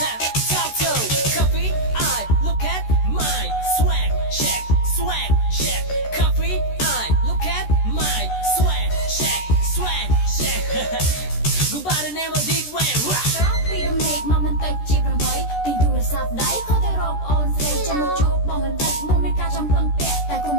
Talk to coffee, I look at my swag, check. Coffee, I look at my swag, check. Go by the name of Deep Wayne. ពីរំលែកមកមិនតិចជា8ទីទូរស័ព្ទដៃខុសទៅរកអូនស្រីចាំមកជួបបងមិនតិចមុនមានការចំពឹងពាក់តែកុំ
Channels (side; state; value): right; late; 13 ms